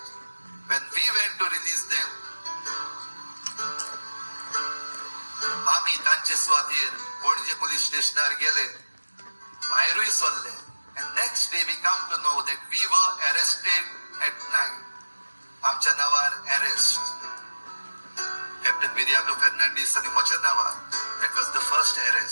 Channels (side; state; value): both; inverted; correlation -1.00